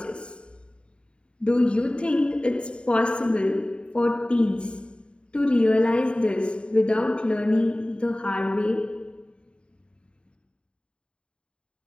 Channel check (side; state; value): right; late; 0.054 ms